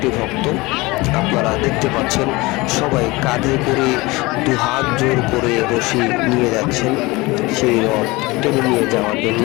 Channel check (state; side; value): quieter; right; 22.5 dB